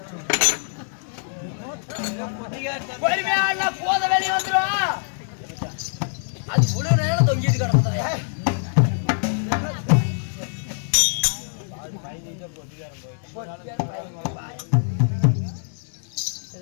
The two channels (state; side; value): silent; right; digital silence